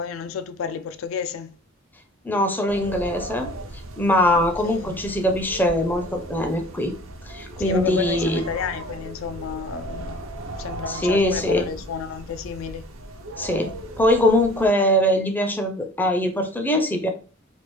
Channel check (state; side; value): normal; both; correlation 0.46